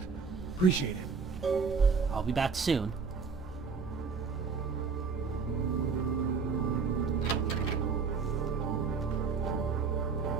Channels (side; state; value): left; quieter; 5.3 dB